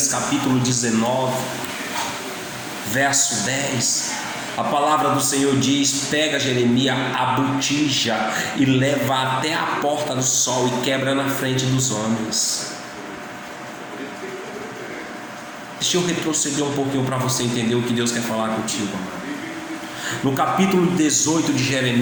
capítulo 19, verso 10, a palavra do Senhor diz: pega Jeremias a botija e leva até a porta do sol e quebra na frente dos homens. Deixa eu retroceder um pouquinho para você entender o que Deus quer falar contigo, amado. No capítulo 18 de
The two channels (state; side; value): identical; both; correlation 1.00